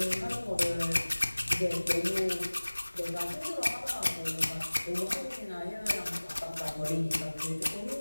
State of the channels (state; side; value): inverted; both; correlation -1.00